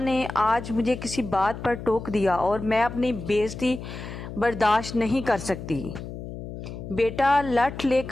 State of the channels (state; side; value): noise; left; hum, 10 dB below the sound